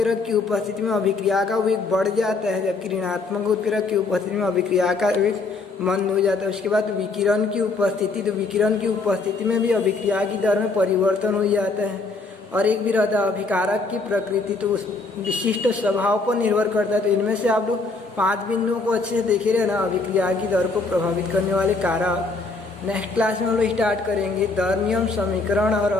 की उपस्थिति में अभिक्रिया का वेग बढ़ जाता है, जबकि ऋणात्मक उत्प्रेरक की उपस्थिति में अभिक्रिया का वेग मंद हो जाता है। उसके बाद विकिरण की उपस्थिति, तो विकिरण की उपस्थिति में भी अभिक्रिया की दर में परिवर्तन हो जाता है। और एक भी रहता है अभिकारक की प्रकृति, तो उस विशिष्ट स्वभाव पर निर्भर करता है। तो इनमें से आप लोग 5 बिंदुओं को अच्छे से देखे रहना, अभिक्रिया की दर को प्रभावित करने वाले कारक। नेक्स्ट क्लास में हम लोग स्टार्ट करेंगे दर नियम, समीकरण और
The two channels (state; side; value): quieter; right; 3.7 dB